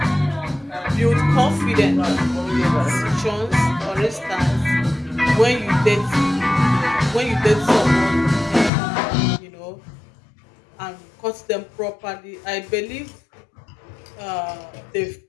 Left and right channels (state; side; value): drops out; right; at 8.7 s